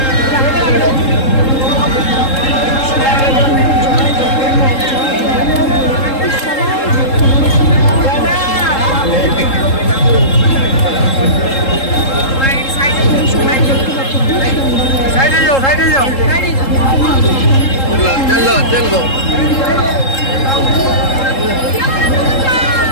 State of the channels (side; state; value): right; late; 3.7 ms